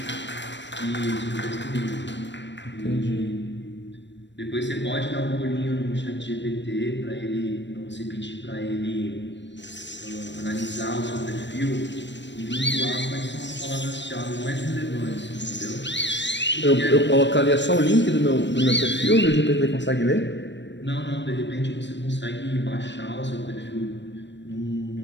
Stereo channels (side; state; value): right; late; 0.53 ms